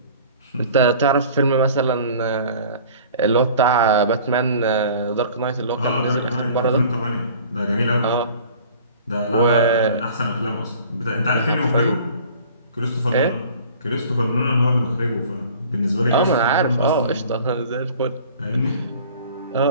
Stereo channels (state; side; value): inverted; both; correlation -0.47